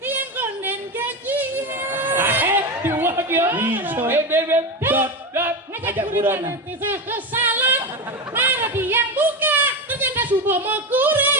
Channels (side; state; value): both; normal; correlation 0.17